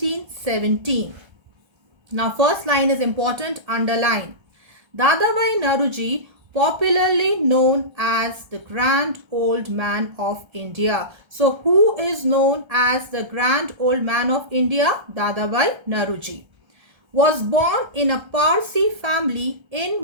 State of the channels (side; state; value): left; late; 1.3 ms